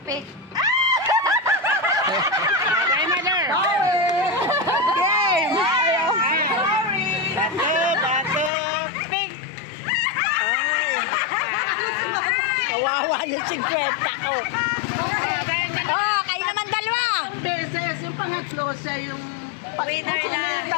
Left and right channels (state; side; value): drops out; right; at 8.5 s